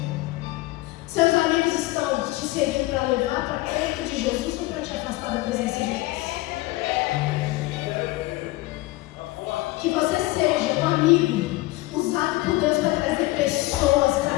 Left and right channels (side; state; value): right; quieter; 19.8 dB